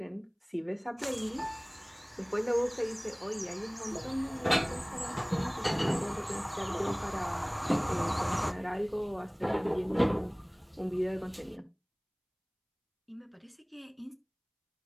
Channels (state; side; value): identical; both; correlation 1.00